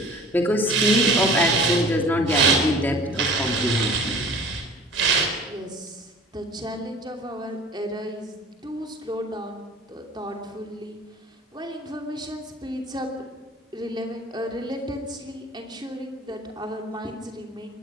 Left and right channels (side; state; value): both; normal; correlation 0.44